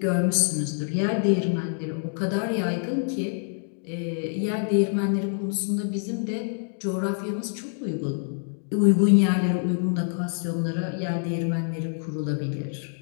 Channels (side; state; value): right; silent; digital silence